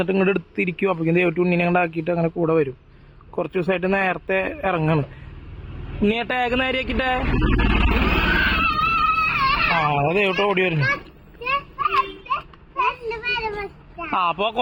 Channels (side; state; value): both; identical; correlation 1.00